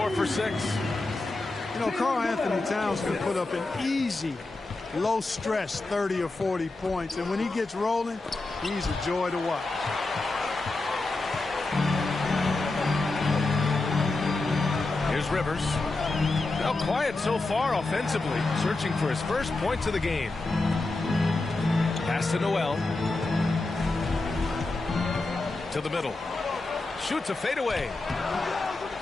for 6. You know, Karl Anthony Towns can put up an easy, low-stress 30 or 40 points. And when he gets rolling, he's a joy to watch. Here's Rivers. Now quiet so far offensively, searching for his first points of the game. Pass to Noel. To the middle. Shoots a fadeaway.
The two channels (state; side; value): quieter; right; 3.2 dB